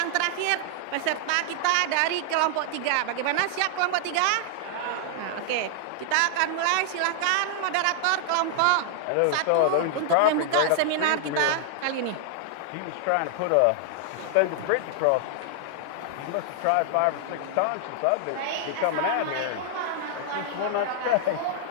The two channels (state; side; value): different; both; correlation -0.01